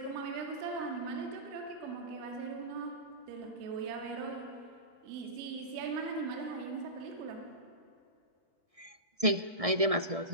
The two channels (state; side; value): late; left; 1.6 ms